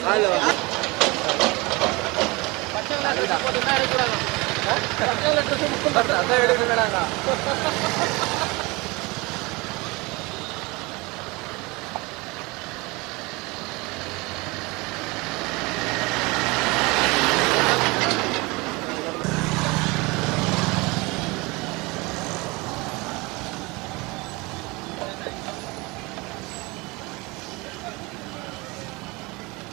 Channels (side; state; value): left; quieter; 24.8 dB